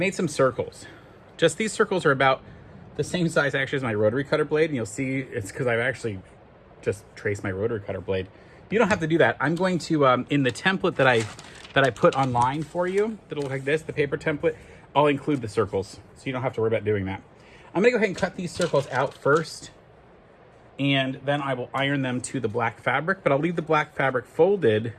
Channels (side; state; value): both; identical; correlation 1.00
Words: some circles. Just these circles are about the same size actually as my rotary cutter blade. And you'll see it's because I've actually just traced my rotary cutter blade. You don't have to do that. I'm going to, in the template that I put online for you, that'll look like this, the paper template, I'll include the circles. So you don't have to worry about doing that. I'm gonna go ahead and cut these circles out first, and then I will iron them to the black fabric, but I'll leave the black fabric folded